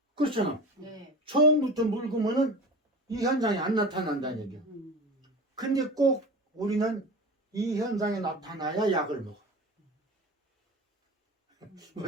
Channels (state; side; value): normal; both; correlation 0.34